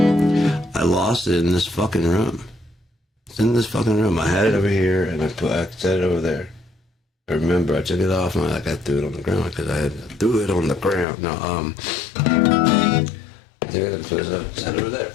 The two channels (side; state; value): right; drops out; at 11.1 s